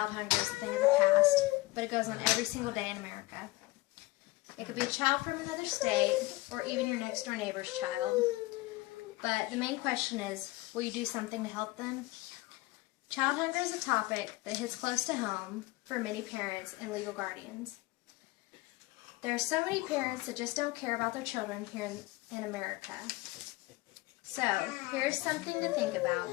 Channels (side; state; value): right; quieter; 20.9 dB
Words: hunger as a thing of the past, but it goes on every single day in America. It could be a child from another state, or even your next door neighbor's child. But the main question is, will you do something to help them? Child hunger is a topic that hits close to home for many parents and legal guardians. There are so many parents that just don't care about their children here in America. So, here's something to think about.